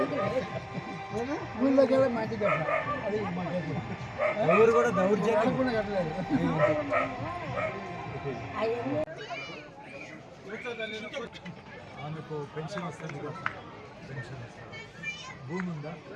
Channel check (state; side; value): identical; both; correlation 1.00